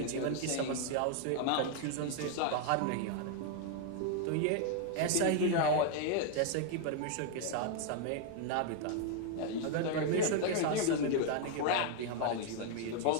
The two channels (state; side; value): different; both; correlation 0.00